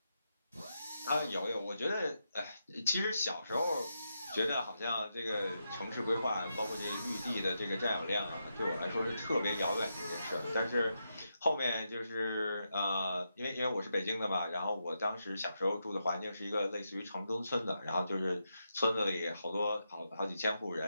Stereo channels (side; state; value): both; inverted; correlation -0.85